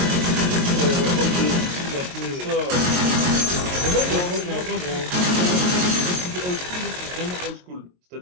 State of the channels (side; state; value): left; late; 22 ms